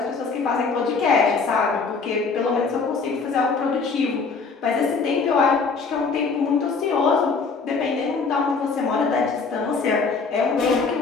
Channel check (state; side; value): quieter; right; 4.7 dB